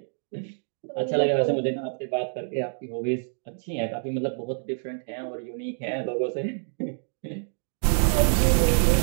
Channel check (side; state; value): left; silent; digital silence